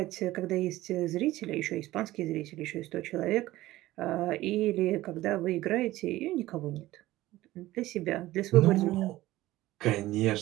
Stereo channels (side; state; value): left; quieter; 16.7 dB